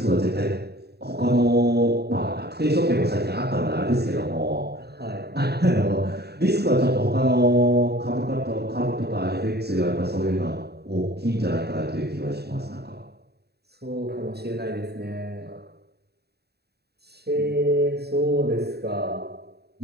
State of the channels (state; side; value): late; left; 0.47 ms